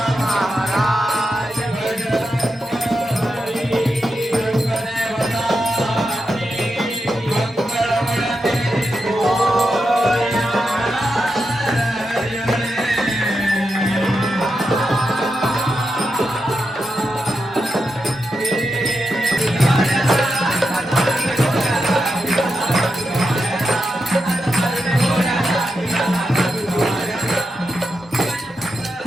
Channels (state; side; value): normal; both; correlation 0.87